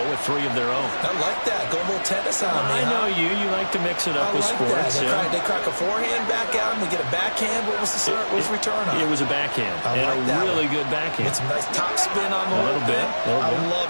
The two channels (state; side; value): inverted; both; correlation -1.00